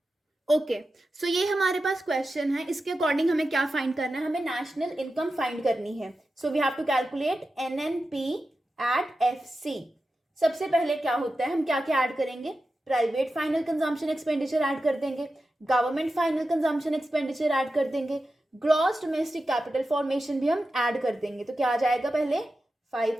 ओके. सो ये हमारे पास क्वेश्चन है. इसके अकॉर्डिंग हमें क्या फाइंड करना है? हमें नेशनल इनकम फाइंड करनी है. So we have to calculate NNP at FC. सबसे पहले क्या होता है? हम क्या क्या ऐड करेंगे? Private final consumption expenditure add कर देंगे, government final consumption expenditure add कर देंगे, ग्रॉस डोमेस्टिक कैपिटल फॉर्मेशन भी हम ऐड कर देंगे. तो क्या आ जाएगा? पहले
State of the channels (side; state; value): both; normal; correlation 0.92